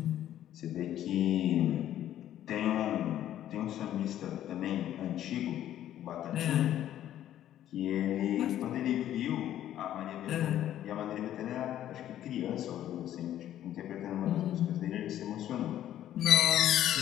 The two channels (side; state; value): right; quieter; 11.9 dB